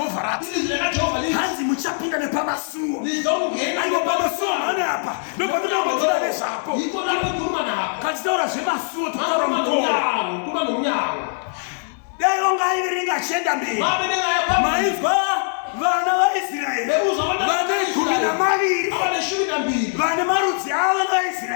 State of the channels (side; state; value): right; silent; 60 dB below the other